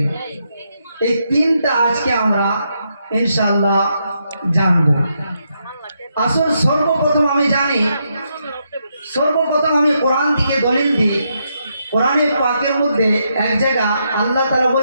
এই তিনটা আজকে আমরা ইনশাআল্লাহ জানবো। আসল সর্বপ্রথম আমি জানি, সর্বপ্রথম আমি কোরআন থেকে দলিল দিই। কোরআনে পাকের মধ্যে এক জায়গা আল্লাহ তাআলা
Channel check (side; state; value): both; inverted; correlation -0.79